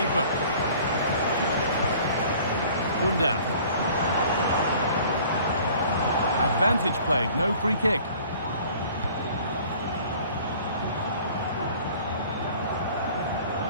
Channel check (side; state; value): both; inverted; correlation -0.50